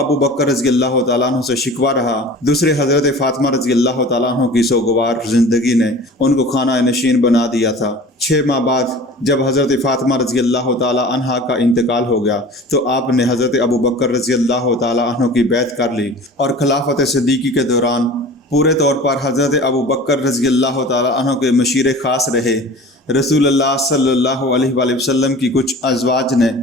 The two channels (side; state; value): both; normal; correlation 0.41